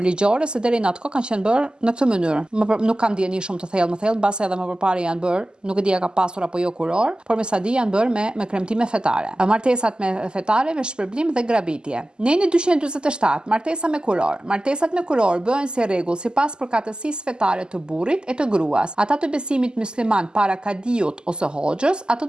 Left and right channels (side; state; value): left; late; 0.046 ms